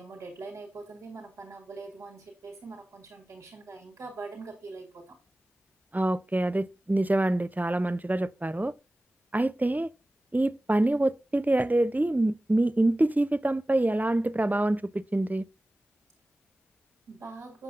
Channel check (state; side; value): normal; both; correlation 0.97